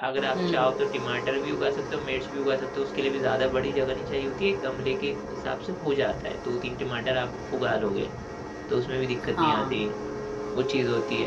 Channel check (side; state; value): both; identical; correlation 1.00